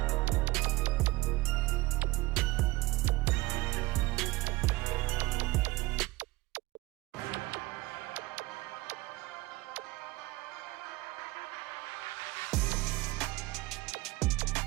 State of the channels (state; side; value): quieter; left; 20.1 dB